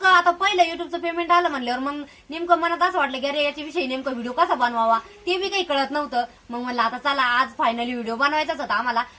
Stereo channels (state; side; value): identical; both; correlation 1.00